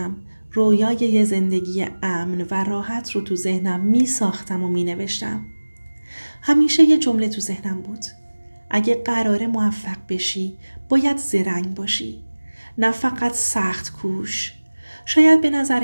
رویای یه زندگی امن و راحت رو تو ذهنم می ساختم و می نوشتم. همیشه یه جمله تو ذهنم بود: اگه قراره موفق بشی باید زرنگ باشی، نه فقط سخت کوش. شاید به نظر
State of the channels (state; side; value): inverted; both; correlation -1.00